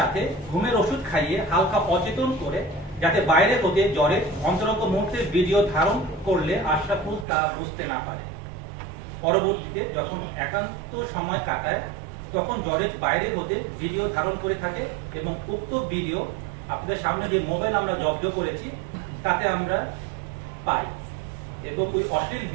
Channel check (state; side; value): drops out; left; at 7.2 s